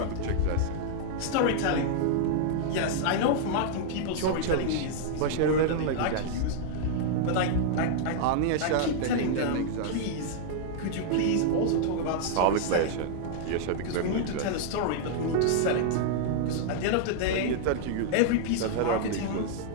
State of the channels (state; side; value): different; both; correlation -0.01